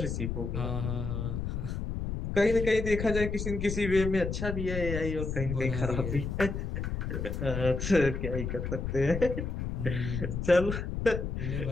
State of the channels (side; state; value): left; noise; rumble, 3 dB below the sound